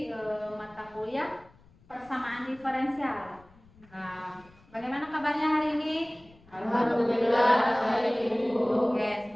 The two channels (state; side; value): noise; left; rumble, 27 dB below the sound